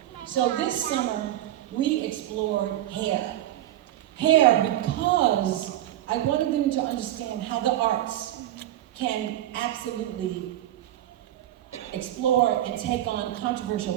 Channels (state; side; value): quieter; left; 13.4 dB